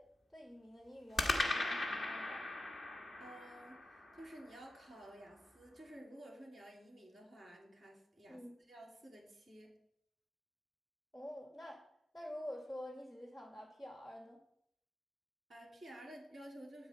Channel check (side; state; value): both; normal; correlation 0.91